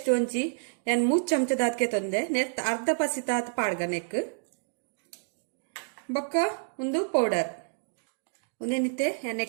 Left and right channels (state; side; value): silent; left; digital silence